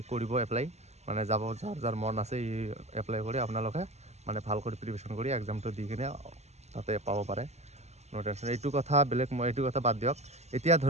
কৰিব এপ্লাই, যাব, যাৰ মন আছে ই এপ্লাই কৰি আপোনালোকে ভাল কৰি প্ৰিপেৰেশ্যন কৰি এক্সামটো দি কিনে তাতে পাব পাৰে। নো টেনশ্যন। এইটো কথা বেলেগ, মই এইটো কথা বাদ দিয়ক। এতিয়া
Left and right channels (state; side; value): late; left; 0.32 ms